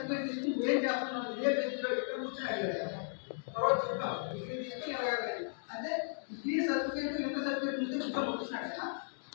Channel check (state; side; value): silent; right; digital silence